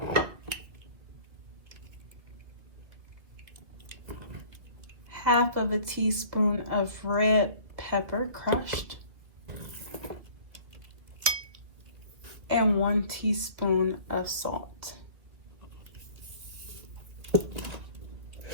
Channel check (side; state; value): left; late; 2.5 ms